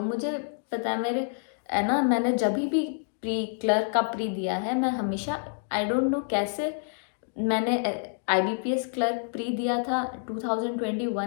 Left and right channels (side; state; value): right; silent; digital silence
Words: मुझे पता है, मेरे है ना, मैंने जब भी प्री क्लर्क का प्री दिया है, मैं हमेशा, आई डोंट नो कैसे, मैंने IBPS क्लर्क प्री दिया था